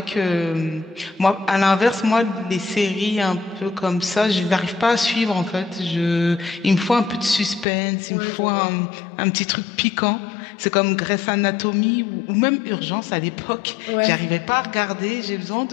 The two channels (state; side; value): drops out; right; at 7.7 s